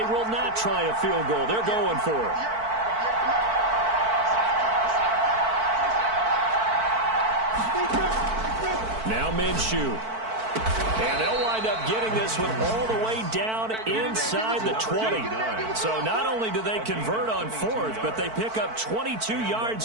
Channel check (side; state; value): left; late; 4.5 ms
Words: will not try a field goal. They're going for it. Now Minshew. And they'll wind up getting this one all the way down inside the 20. So not only do they convert on 4th, but they pick up 22